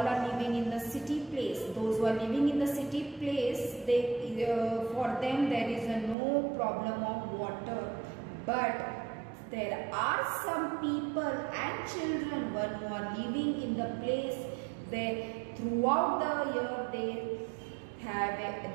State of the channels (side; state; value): left; drops out; at 6.2 s